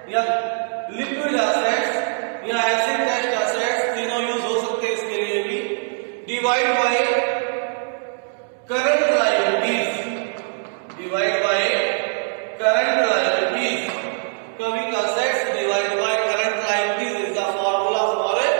या लिक्विड एसेट्स या एसिड टेस्ट एसेट्स, तीनों यूज हो सकते हैं इसके लिए भी, divide by current liabilities, divide by current liabilities, quick assets divide by current liabilities is the formula for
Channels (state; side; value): silent; left; 64 dB below the other